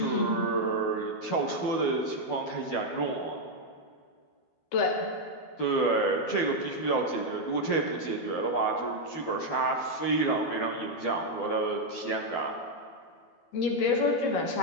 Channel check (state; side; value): late; right; 12 ms